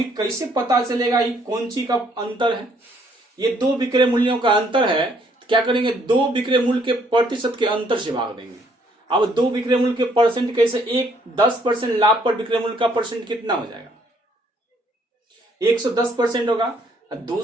कैसे पता चलेगा ये कौन सी का अंतर है, ये दो बिक्री मूल्यों का अंतर है, तो क्या करेंगे, दो बिक्री मूल्य के प्रतिशत के अंतर से भाग देंगे। अब दो बिक्री मूल्य के परसेंट कैसे, एक 10% लाभ पर बिक्री मूल्य का परसेंट कितना हो जाएगा, 110% होगा।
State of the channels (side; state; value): both; normal; correlation 0.66